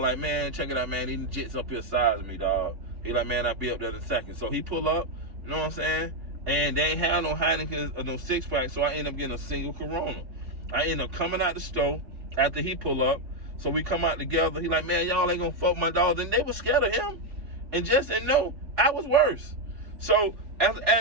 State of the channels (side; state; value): left; late; 3.4 ms